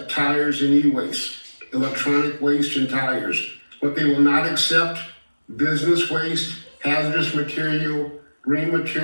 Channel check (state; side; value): inverted; both; correlation -1.00